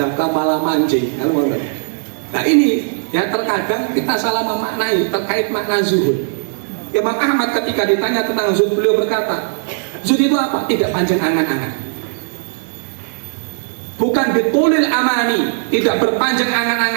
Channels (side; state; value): left; silent; digital silence